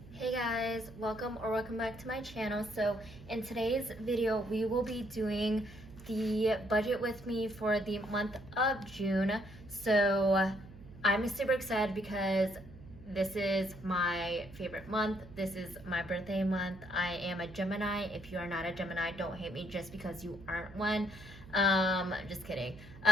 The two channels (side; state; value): right; noise; hum, 18 dB below the sound